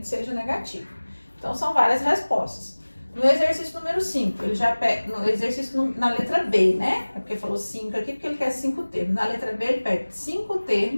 seja negativo. Então, são várias respostas. No exercício número 5, ele já pega, no exercício na letra B, É porque falou 5 aqui, porque ele quer 5 termos. Na letra B, ele pega 5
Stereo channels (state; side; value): inverted; both; correlation -1.00